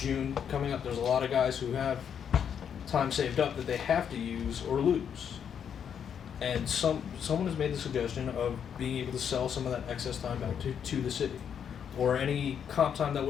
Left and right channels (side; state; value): right; quieter; 8.0 dB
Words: coming up, there's a lot of guys who have time saved up that they have to use or lose. And someone has made the suggestion of being able to sell some of that excess time back to the city, or any comp time that